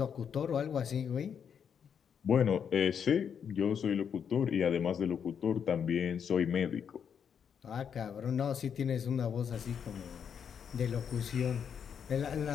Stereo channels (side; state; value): right; quieter; 7.5 dB